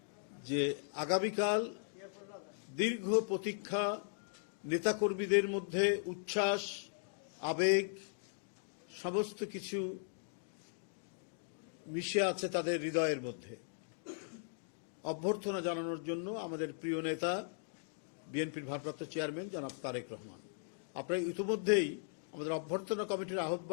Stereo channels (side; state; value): right; silent; digital silence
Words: যে আগামীকাল দীর্ঘ প্রতীক্ষা, নেতাকর্মীদের মধ্যে উচ্ছ্বাস, আবেগ সমস্ত কিছু মিশে আছে তাদের হৃদয়ের মধ্যে। অভ্যর্থনা জানানোর জন্য আমাদের প্রিয় নেতা বিএনপির ভারপ্রাপ্ত চেয়ারম্যান জনাব তারেক রহমান, আপনারা ইতিমধ্যেই আমাদের অভ্যর্থনা কমিটির